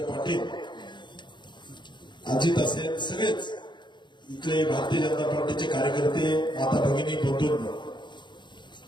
पाटील, अजित असेल, सगळेच इथले भारतीय जनता पार्टीचे कार्यकर्ते, माता भगिनी, बंधूंनो,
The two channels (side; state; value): right; late; 0.22 ms